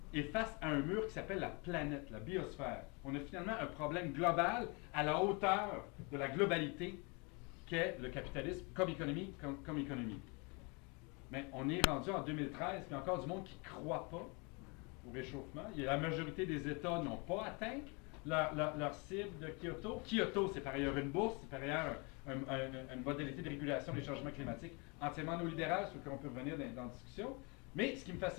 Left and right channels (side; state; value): right; quieter; 31.0 dB